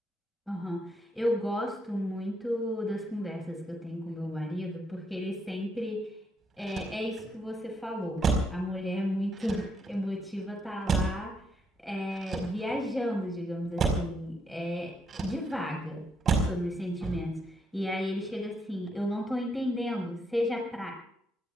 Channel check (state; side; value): normal; both; correlation 0.76